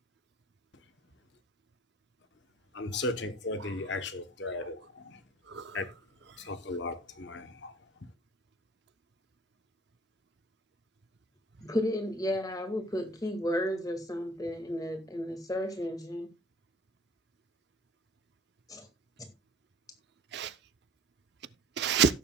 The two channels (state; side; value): normal; both; correlation 0.48